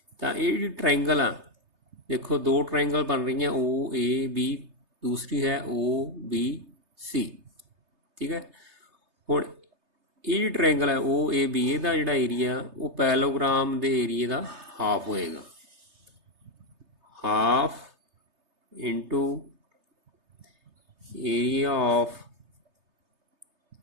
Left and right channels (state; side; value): late; left; 3.3 ms